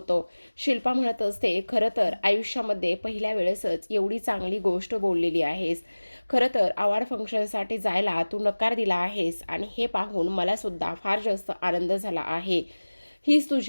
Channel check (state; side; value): inverted; both; correlation -1.00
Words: शिल्पा म्हणत असते खरं तर आयुष्यामध्ये पहिल्या वेळेसच एवढी चांगली गोष्ट बोललेली आहेस. खरं तर अवॉर्ड फंक्शनसाठी जायला तू नकार दिला आहेस आणि हे पाहून मला सुद्धा फार जास्त आनंद झाला आहे. हीच